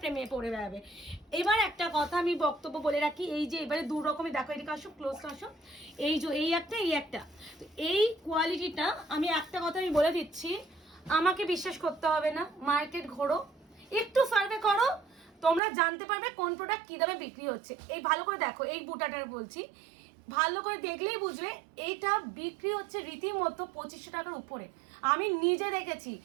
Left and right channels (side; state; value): left; drops out; at 15.6 s